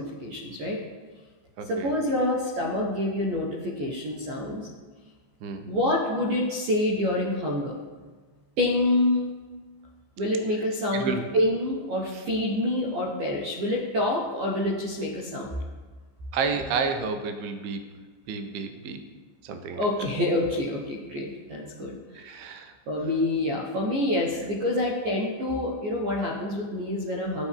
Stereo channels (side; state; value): left; late; 14 ms